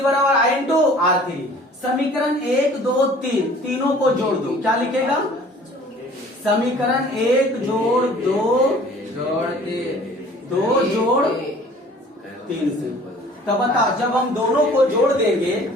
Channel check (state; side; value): normal; both; correlation 0.50